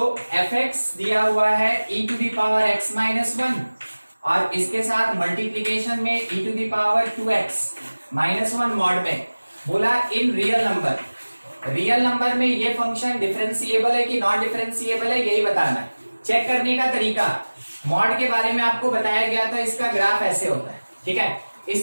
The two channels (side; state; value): both; inverted; correlation -1.00